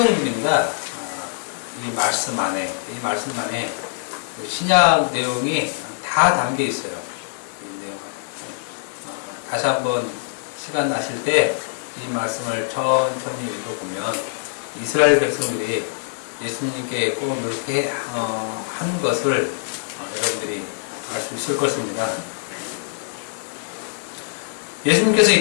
이 말씀 안에 신약 내용이 다 담겨 있어요. 이 내용. 다시 한번 시간 나실 때 이 말씀을 천천히 읽어보면 이스라엘 백성들이 예수님께 꼭 이렇게 한 것을 여러분들이 알 수 있을 것입니다. 예수님께서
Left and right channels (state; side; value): silent; right; 59 dB below the other